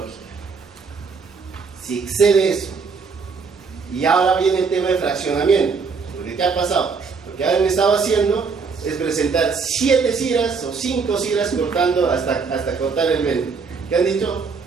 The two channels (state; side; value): quieter; left; 5.1 dB